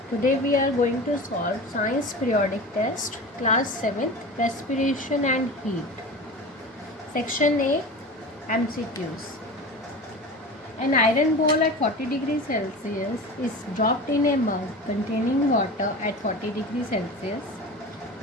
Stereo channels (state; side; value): normal; both; correlation 0.32